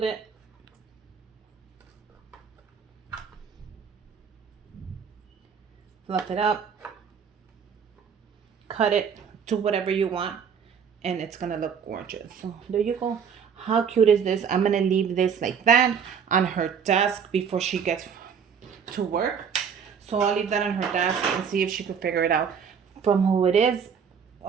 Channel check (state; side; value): quieter; left; 6.9 dB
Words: it. Fluff it up. Cut it to whatever you want. And it's gonna look gorgeous. So there you go. How cute is this? I'm gonna leave this like that on her desk before she gets to work. So I'll leave that on her desk and see if she could figure it out from who it is.